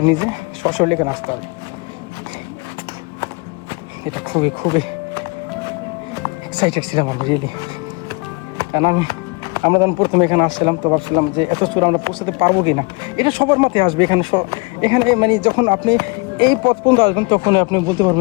নিজে সশরীরে নাচতে হবে। এটা খুবই খুবই এক্সাইটেড ছিলাম আমি রিয়েলি। কারণ আমরা যখন প্রথমে এখানে আসছিলাম তো ভাবছিলাম যে এত চূড়া আমরা পৌঁছাতে পারবো কি না। এটা সবার মাথায় আসবে। এখানে মানে যখন আপনি এই পথ পর্যন্ত আসবেন তখন আপনি বলতে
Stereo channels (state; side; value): quieter; right; 29.2 dB